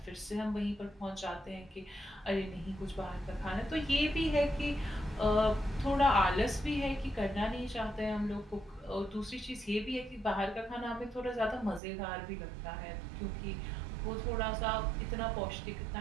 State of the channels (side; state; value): left; drops out; at 11.8 s